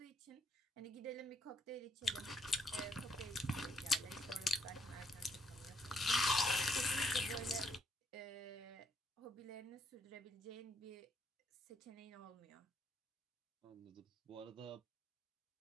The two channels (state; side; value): normal; both; correlation 0.72